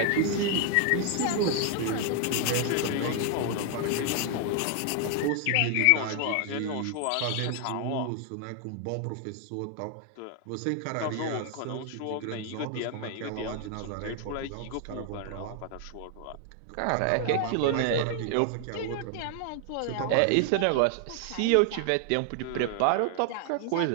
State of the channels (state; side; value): different; both; correlation 0.00